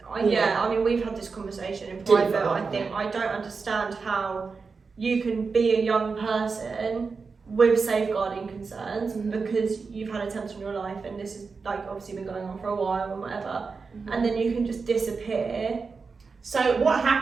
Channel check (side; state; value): left; quieter; 4.8 dB